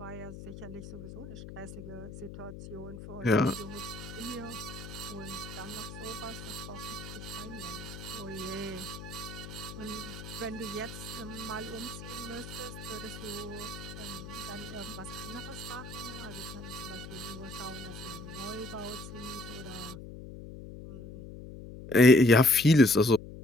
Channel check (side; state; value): left; noise; hum, 12 dB below the sound